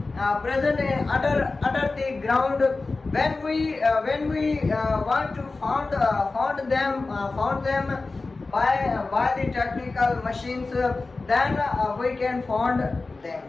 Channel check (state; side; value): quieter; right; 3.6 dB